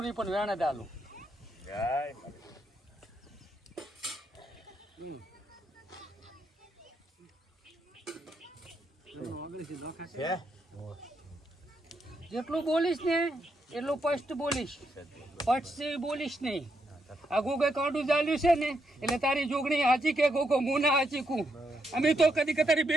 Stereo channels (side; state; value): both; normal; correlation 0.79